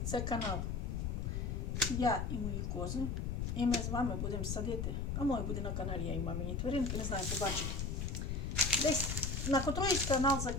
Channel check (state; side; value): noise; left; rumble, 1 dB below the sound